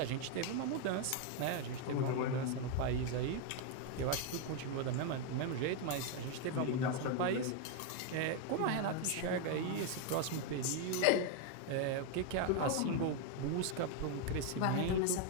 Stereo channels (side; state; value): both; different; correlation 0.01